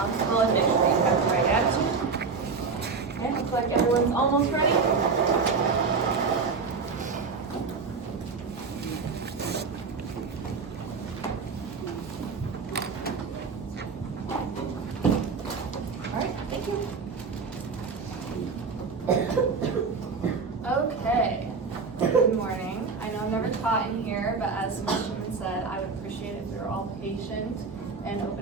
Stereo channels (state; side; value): quieter; left; 4.8 dB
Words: and make sure you have the right attitude. Okay, looks like everyone's almost ready. Alright, thank you. Okay, good morning. I know I'm never taught in here, but as Ms. Schumann said, I would appreciate if we were all patient and